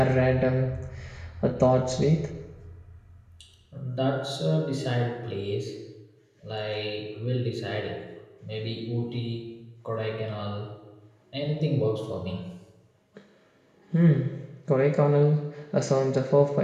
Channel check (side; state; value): both; identical; correlation 1.00